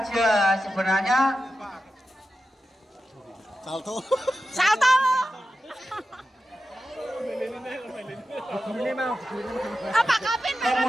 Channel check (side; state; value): both; normal; correlation 0.92